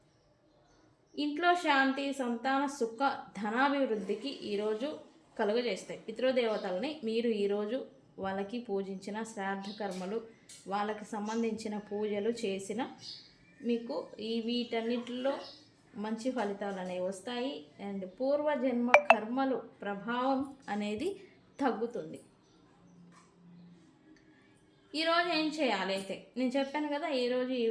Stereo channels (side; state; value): both; identical; correlation 1.00